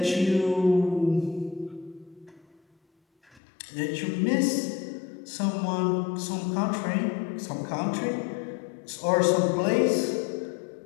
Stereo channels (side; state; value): right; drops out; at 3.4 s